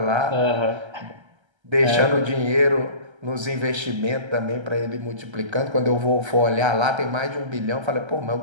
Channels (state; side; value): late; left; 1.3 ms